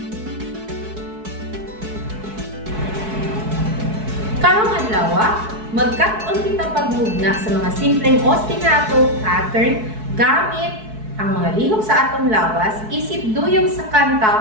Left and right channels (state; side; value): late; left; 4.6 ms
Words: Pangalawa, magkataon kita pagmugna sa mga simpleng ostinato pattern gamit ang mga lihok sa atong lawas isip duyong sa